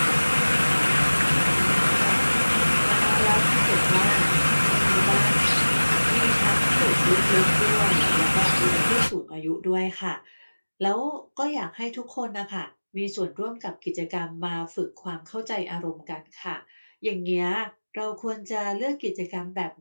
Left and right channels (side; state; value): both; inverted; correlation -1.00